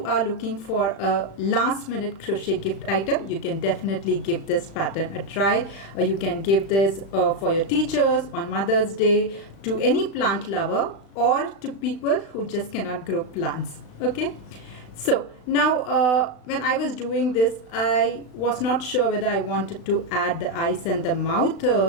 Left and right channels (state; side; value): late; right; 36 ms